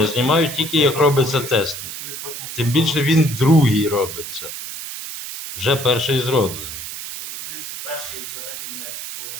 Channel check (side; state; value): right; noise; hiss, 8 dB below the sound